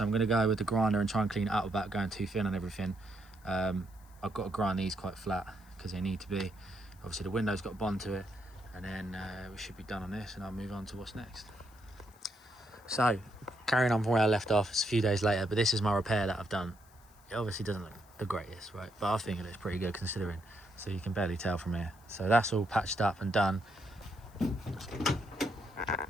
I'm going to go with the grinder and try and clean it up without going too thin on everything. I've got to grind these quite flat because they need to be. Obviously the window's got a bond to it, and then we should be done on this, and I'll move on to what's next. So carrying on from where I left off, it's a few days later, but this is my repair that I've done. It obviously doesn't look the greatest, right? But I think it looks pretty good considering. So you can barely tell from here. So that's all patched up and done.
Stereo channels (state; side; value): noise; left; hiss, 28 dB below the sound